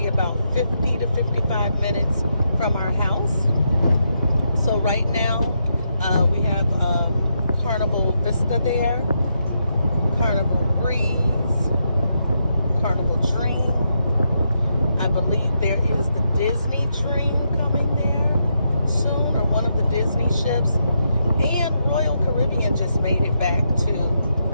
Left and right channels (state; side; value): inverted; both; correlation -0.81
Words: about 50 to 55 minutes from our house. So right now we have Carnival Vista there, Carnival Breeze, Carnival Dream. I believe there is the Disney Dream coming there soon, or one of the Disney ships. And Royal Caribbean just made it back to